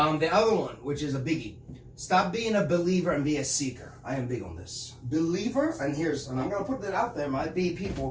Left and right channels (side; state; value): both; identical; correlation 1.00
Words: other one, which is a biggie, stop being a believer and be a seeker. I am big on this. Believer, and I'm going to put that out there, might be